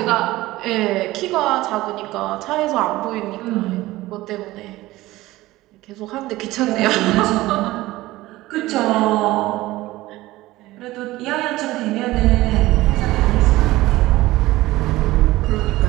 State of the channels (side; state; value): left; quieter; 17.9 dB